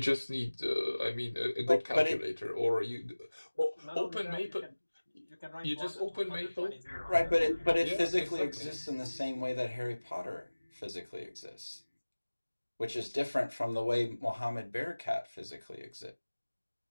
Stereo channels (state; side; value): inverted; both; correlation -1.00